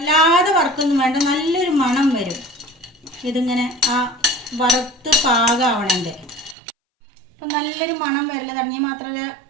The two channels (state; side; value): drops out; left; at 6.6 s